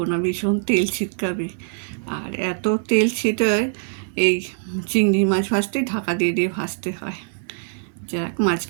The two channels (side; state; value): left; silent; digital silence